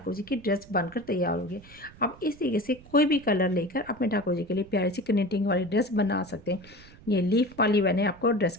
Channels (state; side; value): noise; right; rumble, 22 dB below the sound